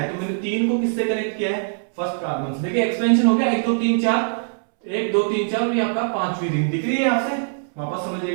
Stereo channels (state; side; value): silent; left; 64 dB below the other